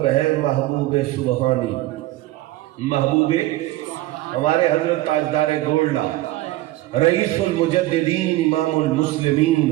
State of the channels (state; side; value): quieter; left; 16.9 dB